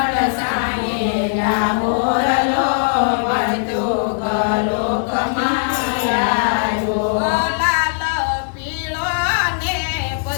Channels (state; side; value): silent; right; digital silence